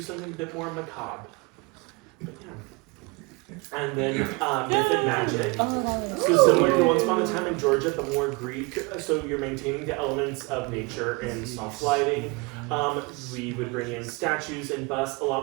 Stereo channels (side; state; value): left; quieter; 26.6 dB